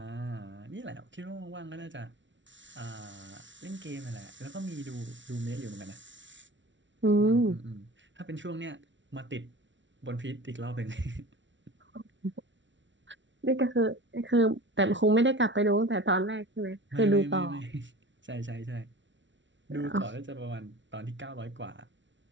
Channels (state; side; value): late; left; 0.55 ms